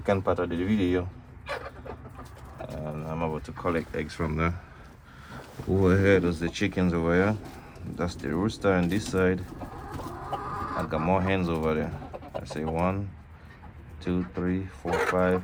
part of the video, and I'm about to collect eggs from there. Over here, there's the chickens over here. That's the rooster on this side. I got more hens over there. I say 1, 2, 3, 4, 5.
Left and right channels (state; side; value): identical; both; correlation 1.00